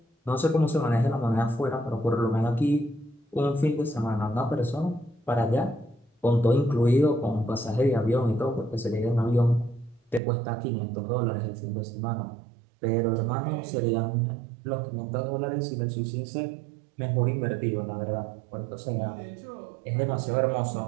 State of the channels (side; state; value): left; drops out; at 10.2 s